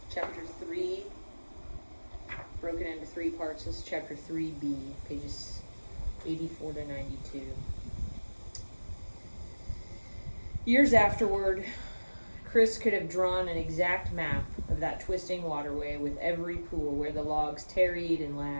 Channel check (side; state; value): both; inverted; correlation -1.00